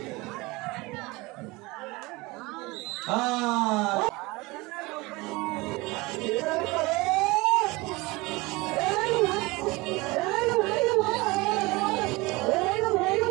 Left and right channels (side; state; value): left; quieter; 23.2 dB